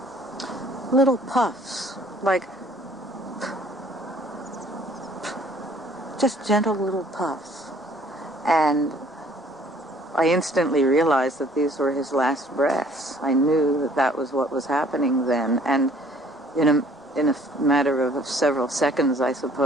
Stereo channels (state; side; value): normal; both; correlation 0.57